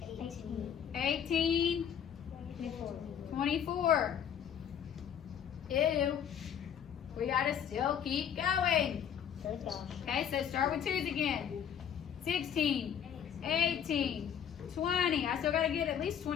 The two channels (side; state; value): right; quieter; 8.7 dB